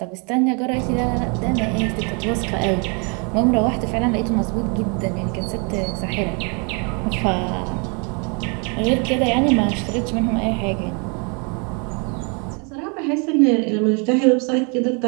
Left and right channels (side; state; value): left; quieter; 35.3 dB